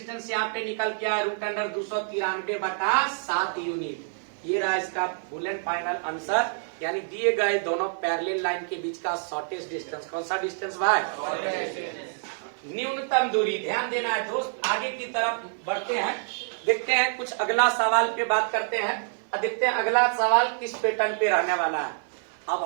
यहाँ पे निकल के आया रूट अंडर 293 बटा 7 यूनिट। ये रहा इसका फुल एंड फाइनल आंसर, यानी दिए गए दोनों पैरेलल लाइन के बीच का शॉर्टेस्ट डिस्टेंस। कौन सा डिस्टेंस भाई? न्यूनतम दूरी। ध्यान देना है दोस्त, आगे की तरफ बढ़ते हैं, देखते हैं कुछ अगला सवाल पे बात करते हैं और देखते हैं अगला सवाल किस पैटर्न पे रहने वाला है। अब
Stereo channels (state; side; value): silent; left; digital silence